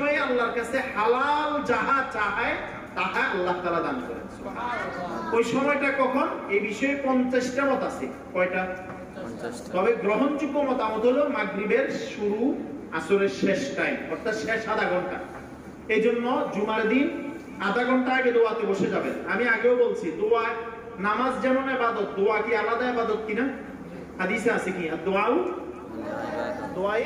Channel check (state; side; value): identical; both; correlation 1.00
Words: আল্লাহর কাছে হালাল যাহা চায় তাহা আল্লাহ তাআলা দান করেন। ওই সময়টা কখন? এই বিষয়ে 50টা মত আছে। কয়টা? 50টা। তবে গ্রহণযোগ্য মতামত হলো মাগরিবের শুরু, আসরের শেষ টাইম, অর্থাৎ শেষ আধা ঘন্টা। এই জন্য জুমার দিন আধা ঘন্টা আগে দোয়াতে বসে যাবেন। আমি আগেও বলছি, দোয়া, নামাজ যেমন ইবাদত, দোয়া কি আলাদা ইবাদত কিনা? হাদিসে আছে কি, দোয়াও দোয়াই